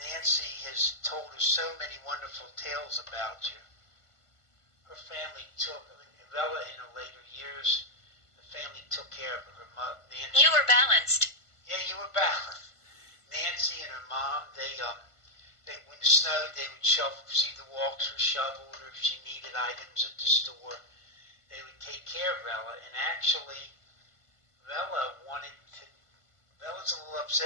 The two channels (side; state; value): right; late; 1.5 ms